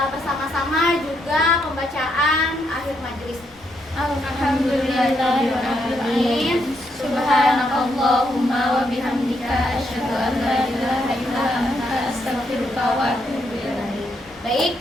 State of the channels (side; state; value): left; noise; rumble, 29 dB below the sound